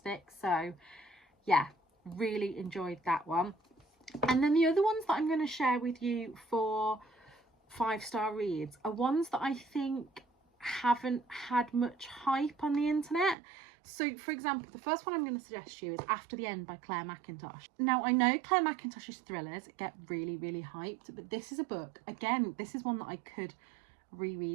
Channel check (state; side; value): drops out; left; at 13.4 s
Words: So yeah, really enjoyed that one. And then the other ones that I'm going to share with you for 5-star reads are ones that I think haven't had much hype on the internet. So for example, the first one I'm going to suggest you is After the End by Claire Mackintosh. Now I know Claire Mackintosh's thrillers get really, really hyped, but this is a book, again, this is one that I could